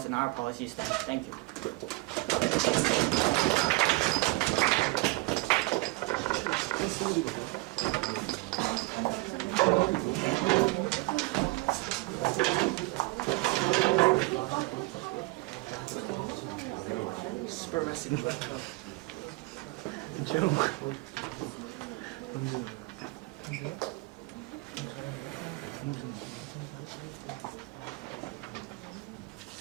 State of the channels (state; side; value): quieter; left; 23.8 dB